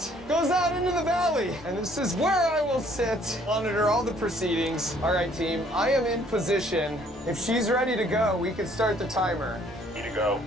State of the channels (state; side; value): normal; both; correlation 0.61